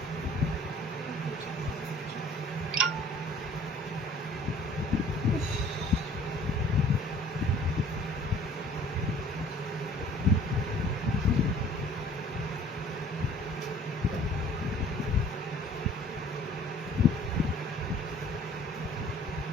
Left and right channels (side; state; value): both; normal; correlation 0.51